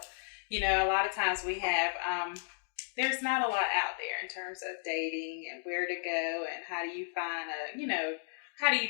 you know, a lot of times we have, there's not a lot out there in terms of dating and where to go and how do you find how do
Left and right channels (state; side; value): silent; right; digital silence